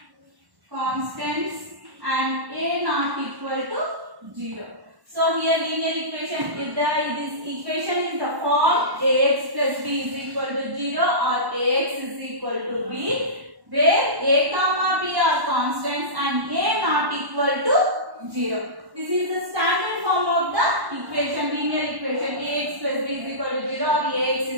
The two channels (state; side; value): late; left; 1.1 ms